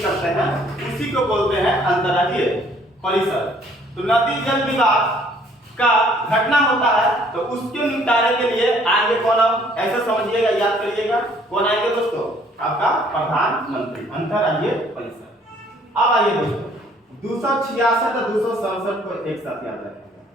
करते हैं, उसी को बोलते हैं अंतरराज्यीय परिषद। तो नदी जल विवाद का घटना होता है तो उसके निपटारे के लिए आएंगे कौन, हम ऐसे समझिएगा, याद करिएगा, कौन आएंगे दोस्तों, आपका प्रधानमंत्री, अंतरराज्यीय परिषद। अब आइए दोस्तों 266 और 267 को एक साथ याद रखेंगे।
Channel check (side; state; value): both; normal; correlation 0.60